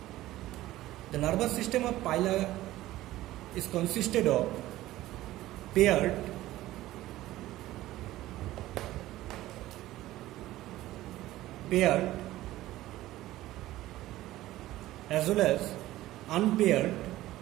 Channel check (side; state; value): left; quieter; 15.8 dB